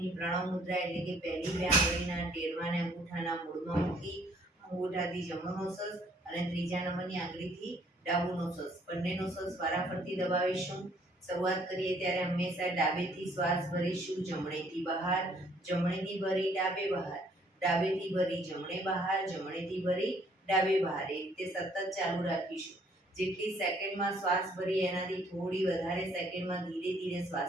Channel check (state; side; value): normal; both; correlation 0.63